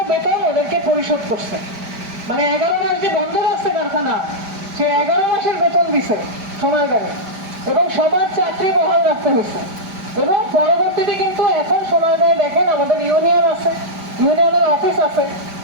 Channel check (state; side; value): late; left; 5.0 ms